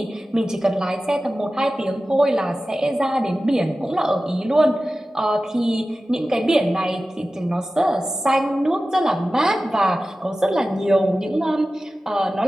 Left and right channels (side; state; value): both; normal; correlation 0.95